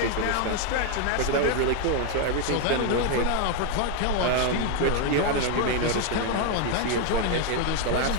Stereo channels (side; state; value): both; different; correlation 0.01